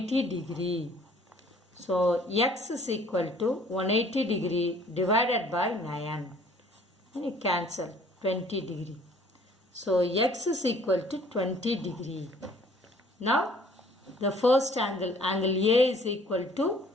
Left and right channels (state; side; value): normal; both; correlation 0.56